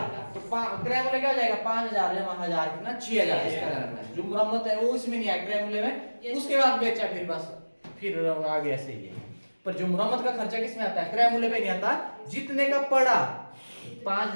तो क्रय मूल्य क्या हो जाएगा 5000 जमा 1000 कितना 6000, इसका ध्यान, जो मुरम्मत है वो इसमें नहीं आया क्रय मूल्य में, उसके बाद बेचा फिर बस, फिर आगे ऐसे ही है। पर जो मुरम्मत का खर्चा किसमें आता है क्रय मूल्य पे नहीं आता, जितने का पड़ा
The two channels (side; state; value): both; inverted; correlation -1.00